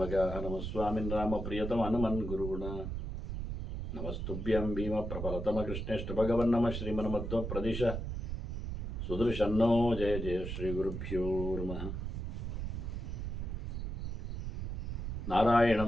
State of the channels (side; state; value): right; noise; rumble, 4 dB below the sound